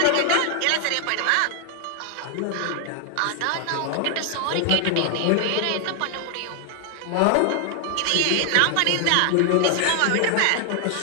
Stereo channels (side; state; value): both; different; correlation 0.00